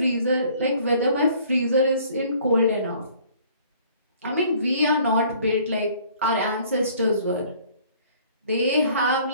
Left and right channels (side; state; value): both; inverted; correlation -0.55